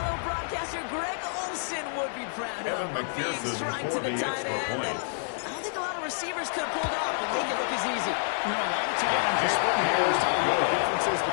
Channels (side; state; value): right; silent; digital silence